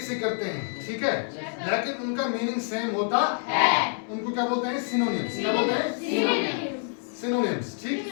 से करते हैं, ठीक है, लेकिन उनका मीनिंग सेम होता है। उनको क्या बोलते हैं? सिनोनिम्स। क्या बोलते हैं? सिनोनिम्स, ठीक।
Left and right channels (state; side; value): silent; right; 59 dB below the other